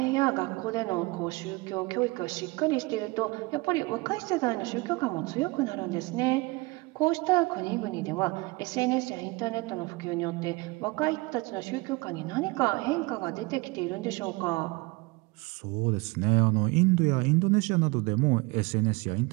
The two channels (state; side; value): quieter; left; 24.6 dB